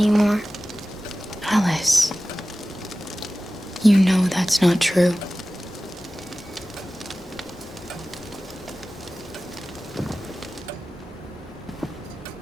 Alice, you know that's not true.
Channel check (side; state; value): both; normal; correlation 0.96